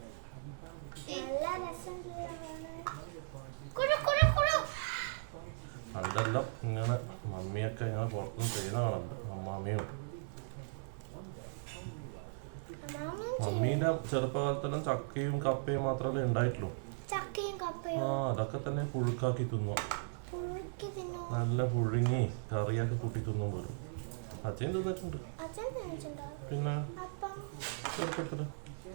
പണ്ടെല്ലാം ഇങ്ങനെ മമ്മിയൊക്കെ ഇങ്ങനെ പുറത്തുനിന്ന് ചെയ്യുന്ന കാണുന്നുണ്ട്. അമ്മാമ്മയും മമ്മീന്റെ ചെറുപ്പകാലത്തെല്ലാം ചക്കയും കപ്പയും മാത്രമല്ലേ ഉണ്ടായിട്ടുള്ളൂ. അതൊക്കെ തന്നെ പുഴുക്കാക്കി തിന്നു, നല്ല പുഴുങ്ങി കറിയാക്കി കൂട്ടി തിന്നും പോലും. അച്ഛൻ തിന്നിട്ടുണ്ട്. പിന്നെ ചെറുപ്പത്തില്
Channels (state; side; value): silent; left; 53 dB below the other